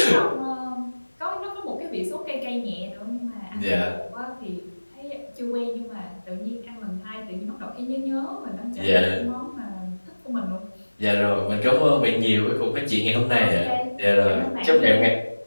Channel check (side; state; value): both; inverted; correlation -1.00